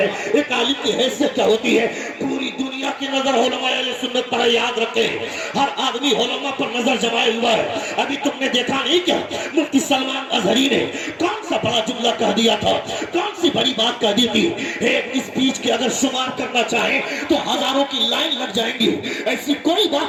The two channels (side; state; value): both; identical; correlation 1.00